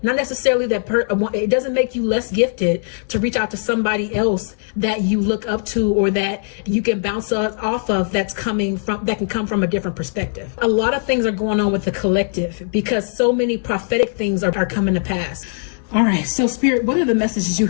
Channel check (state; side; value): silent; right; digital silence